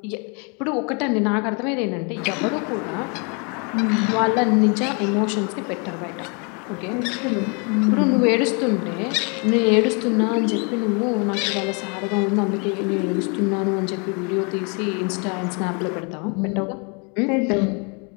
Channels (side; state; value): right; quieter; 34.3 dB